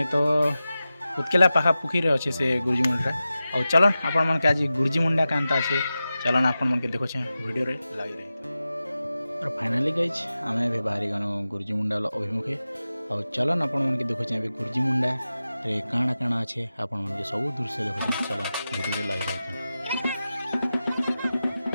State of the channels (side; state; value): both; inverted; correlation -0.94